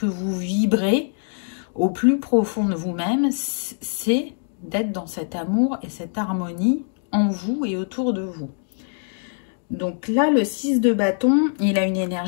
vous vibrez au plus profond de vous-même. C'est d'être dans cet amour et cette harmonie en vous et autour de vous. Donc là, le 6 de bâton, il a une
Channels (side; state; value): right; silent; 63 dB below the other